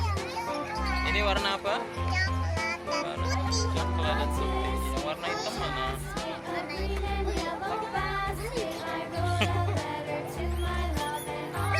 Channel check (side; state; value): both; identical; correlation 1.00